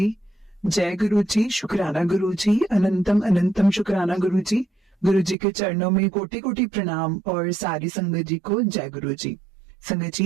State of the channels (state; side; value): drops out; left; at 5.4 s